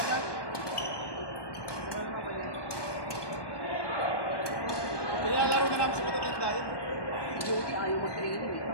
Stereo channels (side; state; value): right; late; 1.2 ms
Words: Nilalaro na namin sa matatanda yun. Jody, ayaw mag-training.